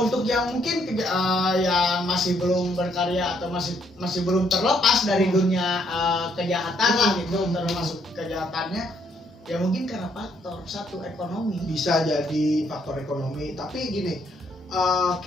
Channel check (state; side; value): normal; both; correlation 0.71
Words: untuk yang mungkin yang masih belum berkarya atau masih belum terlepas dari dunia kejahatan gitu, termasuk kejahatannya. Ya mungkin karena faktor satu ekonomi. Bisa jadi faktor ekonomi, tapi gini,